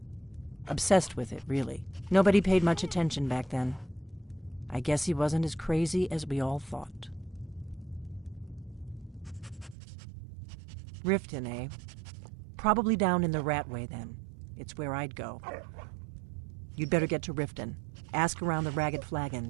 Obsessed with it, really. Nobody paid much attention back then. I guess he wasn't as crazy as we all thought. Riften, eh? Probably down in the Ratway, then. It's where I'd go. You'd better get to Riften. Ask around the Ragged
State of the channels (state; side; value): drops out; left; at 9.8 s